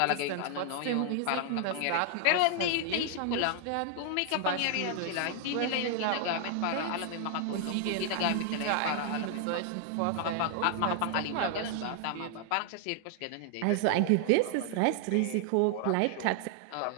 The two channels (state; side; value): different; both; correlation 0.00